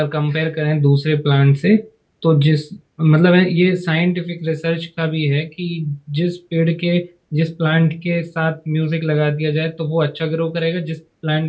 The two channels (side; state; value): both; identical; correlation 1.00